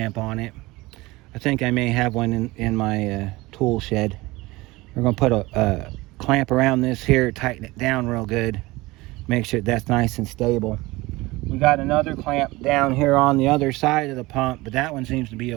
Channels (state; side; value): quieter; left; 21.0 dB